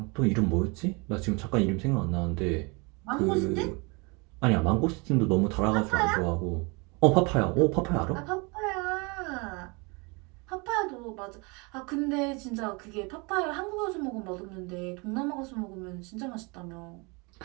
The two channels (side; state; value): left; quieter; 29.1 dB